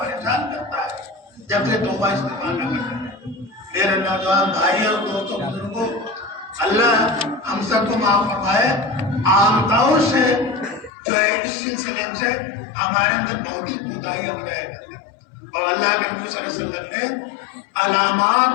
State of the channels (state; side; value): drops out; right; at 10.9 s